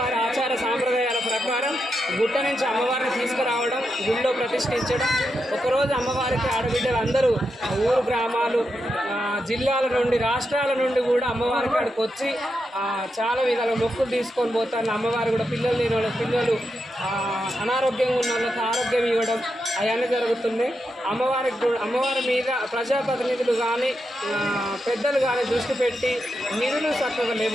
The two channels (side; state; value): both; normal; correlation 0.86